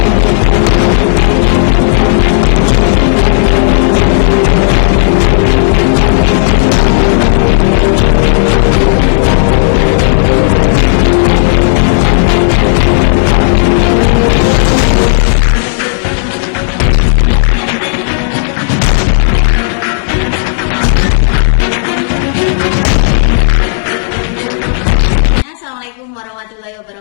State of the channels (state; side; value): silent; right; 63 dB below the other